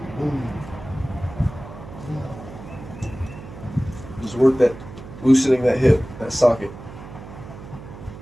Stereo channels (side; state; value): right; noise; hum, 14 dB below the sound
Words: Just work that, loosening that hip, that socket.